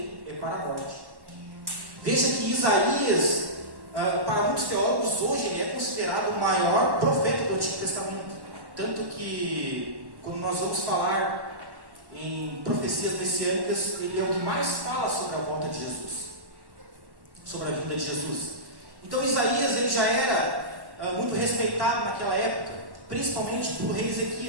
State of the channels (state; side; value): late; left; 1.1 ms